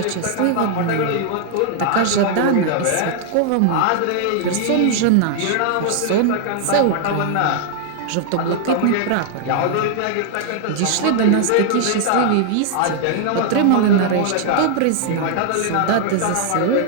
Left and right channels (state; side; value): different; both; correlation 0.00